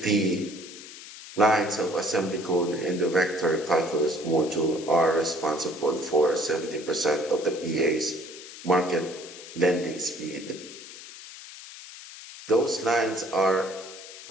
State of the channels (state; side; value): noise; left; hiss, 15 dB below the sound